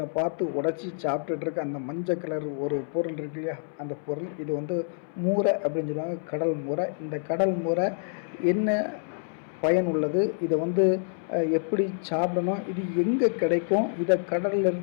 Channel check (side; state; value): right; silent; 60 dB below the other